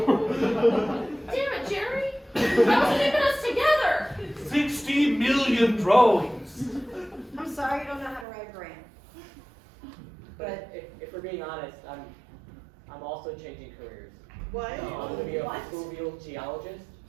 it, Jerry! That was keeping us together! 60 million drones! I'm sorry you don't know how to write a grant. But if we're being honest, I'm also changing careers. What? I'm gonna be a What? fluvial geologist.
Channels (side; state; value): left; drops out; at 8.2 s